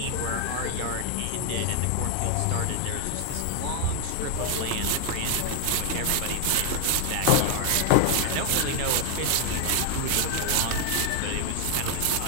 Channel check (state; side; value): different; both; correlation 0.00